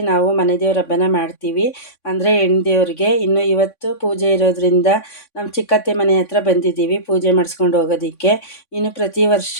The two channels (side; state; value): right; late; 3.5 ms